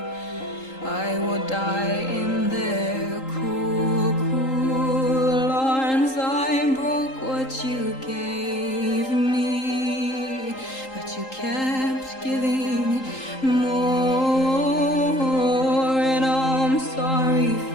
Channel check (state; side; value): late; right; 3.8 ms